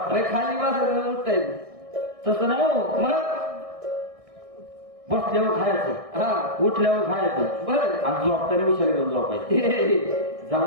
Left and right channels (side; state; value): left; late; 1.6 ms